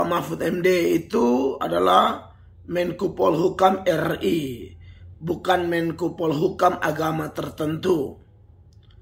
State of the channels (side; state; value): both; identical; correlation 1.00